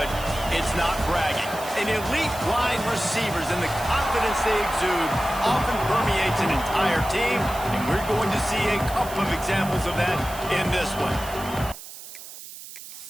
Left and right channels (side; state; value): right; noise; hiss, 14 dB below the sound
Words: it's not bragging. An elite wide receivers and the confidence they exude often permeates an entire team, and we're going to see a couple of examples of that in this one.